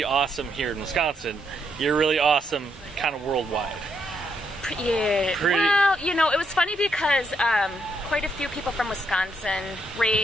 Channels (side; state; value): both; normal; correlation 0.77